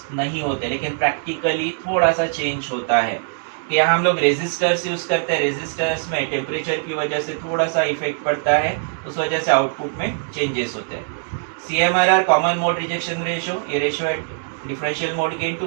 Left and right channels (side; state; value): left; silent; 65 dB below the other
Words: नहीं होते, लेकिन प्रैक्टिकली थोड़ा सा चेंज होता है। यहाँ हम लोग रेजिस्टर्स यूज करते हैं, रेजिस्टर्स में टेम्परेचर की वजह से थोड़ा सा इफेक्ट पड़ता है, उस वजह से आउटपुट में चेंजेस होते हैं। CMRR common mode rejection ratio, ये रेशियो है differential mode gain to